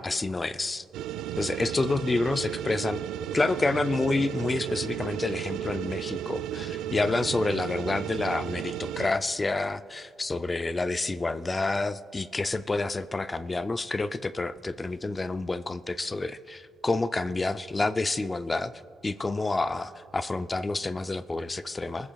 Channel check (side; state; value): both; normal; correlation 0.89